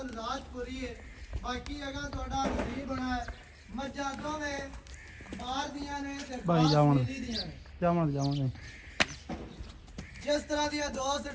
ਜ਼ਾਤ ਪੂਰੀ ਹੈ। ਬਾਕੀ ਅਗਾ ਤੁਹਾਡਾ ਨਸੀਬ ਬਣਾ ਹੈ। ਮੱਝਾਂ ਦੋਵੇਂ ਬਾਹਰ ਦੀਆਂ ਨੇ ਤੇ ਭਾਈ ਜਾਵਣ ਦੀਆਂ ਨੇ। ਜਾਵਾਂਗੇ ਜਿਸ ਤਰ੍ਹਾਂ ਦੀਆਂ ਦੋਸਤ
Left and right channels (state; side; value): identical; both; correlation 1.00